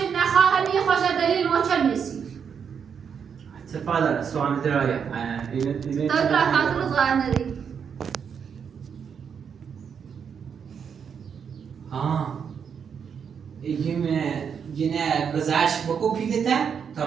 نخواه همه خوش دلیل ما چه میسی تفضل سوال درايه تو برای رو ظاهر نداری یه گذشت بکو پیلته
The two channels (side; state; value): left; quieter; 7.0 dB